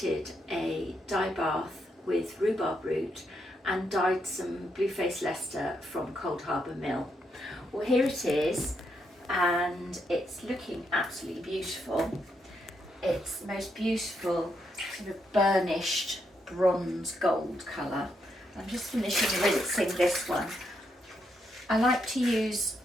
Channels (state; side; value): normal; both; correlation 0.79